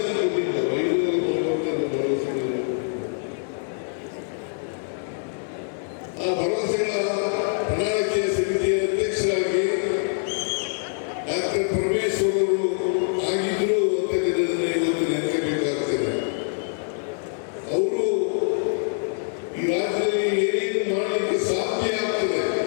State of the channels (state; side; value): silent; right; digital silence